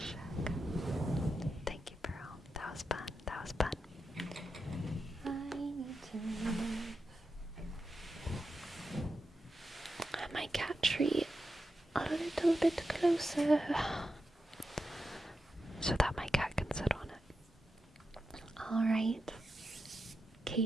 Thank you, Pearl. That was fun. I need to move my cat tree a little bit closer. so that my cat can sit on it. Alright.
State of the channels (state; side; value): normal; both; correlation 0.89